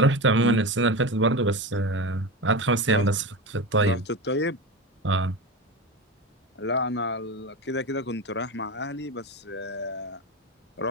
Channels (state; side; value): normal; both; correlation 0.22